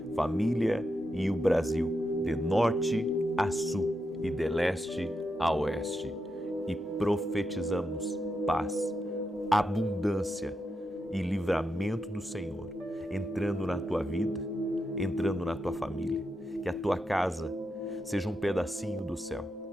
família e o Brasil, de norte a sul e de leste a oeste. E profetizamos paz, abundância e livramento do Senhor entrando na tua vida, entrando na tua família. Que a tua casa seja um pedacinho do céu,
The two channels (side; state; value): both; normal; correlation 0.85